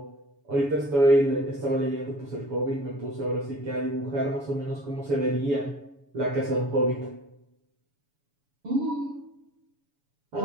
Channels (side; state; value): left; late; 7.1 ms